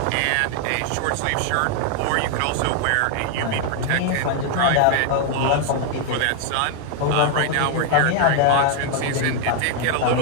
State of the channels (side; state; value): both; different; correlation 0.00